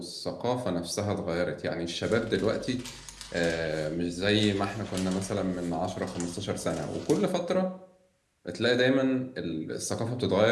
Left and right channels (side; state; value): both; identical; correlation 1.00